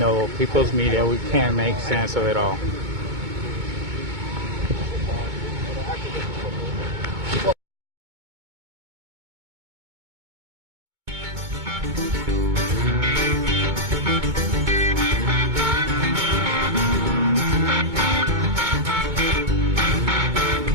people's media, we can't make sense of it all.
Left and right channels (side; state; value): left; late; 2.2 ms